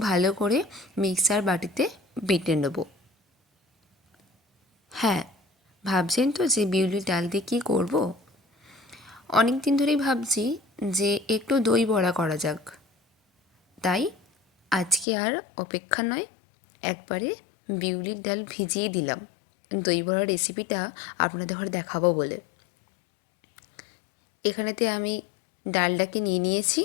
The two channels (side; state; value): right; drops out; at 15.1 s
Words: ভালো করে মিক্সার বাটিতে বেটে নেব। হ্যাঁ, ভাবছেন তো যে বিউলির ডাল দিয়ে কী করব? অনেক দিন ধরেই ভাবছি যে একটু দই বড়া করা যাক। তাই আজকে আর অপেক্ষা নয়, একবারে বিউলির ডাল ভিজিয়ে দিলাম দই বড়ার রেসিপিটা আপনাদের ঘরে দেখাবো বলে। এখানেতে আমি ডালটাকে নিয়ে নিয়েছি।